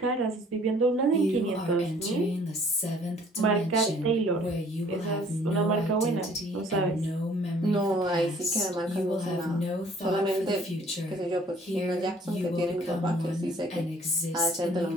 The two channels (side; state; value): both; normal; correlation 0.57